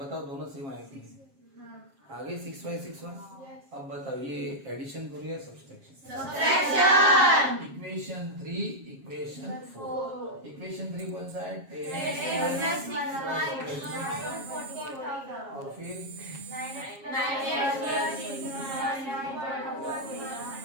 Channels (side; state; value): left; late; 7.4 ms